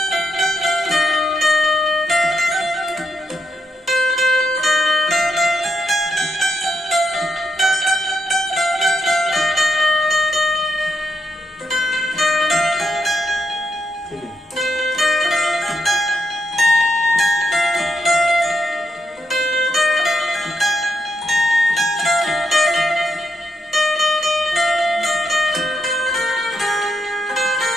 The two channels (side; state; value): both; normal; correlation 0.82